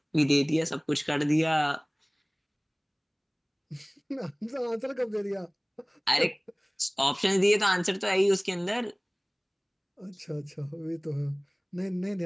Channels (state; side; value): identical; both; correlation 1.00